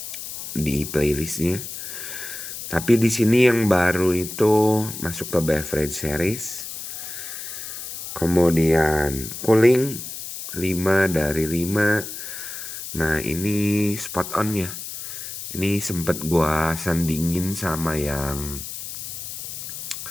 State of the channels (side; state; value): left; noise; hiss, 9 dB below the sound